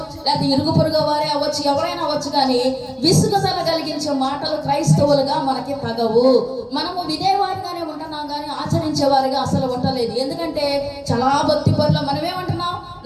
లేదా ఇరుగు పొరుగు వారే అవ్వచ్చు, ఎవరైనా అవ్వచ్చు. కానీ విసుగుదల కలిగించే మాటలు క్రైస్తవులుగా మనకి తగవు. మనము వినేవారిగానే ఉంటున్నాం, కానీ ఆచరించేవారిగా అసలు ఉండలేదు. ఎందుకంటే చాలా భక్తి పనులు మనమేమంటున్నాం?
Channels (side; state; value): both; identical; correlation 1.00